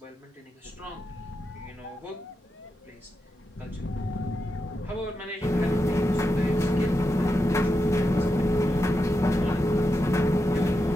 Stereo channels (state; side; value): normal; both; correlation 0.87